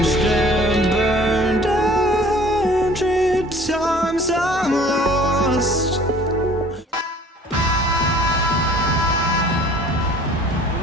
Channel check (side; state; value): both; normal; correlation 0.51